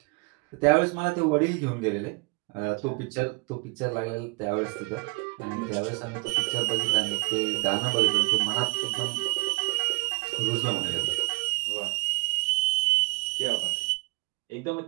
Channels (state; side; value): quieter; left; 30.5 dB